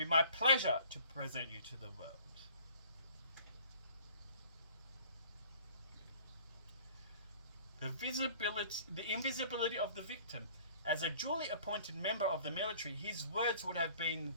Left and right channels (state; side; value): inverted; both; correlation -0.50